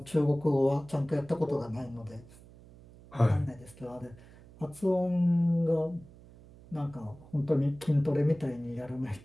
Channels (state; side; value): noise; right; hum, 22 dB below the sound